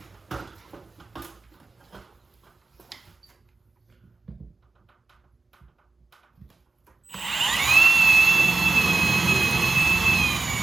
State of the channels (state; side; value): quieter; left; 3.8 dB